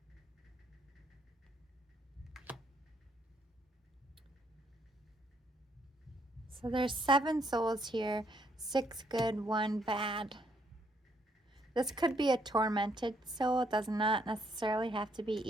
So there's 7 souls here, 6 good, 1 bad. This could be a tormented soul. It does not necessarily have to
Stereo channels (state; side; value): normal; both; correlation 0.71